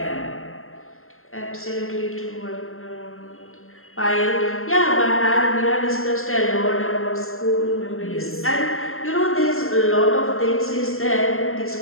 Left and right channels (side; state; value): right; late; 0.62 ms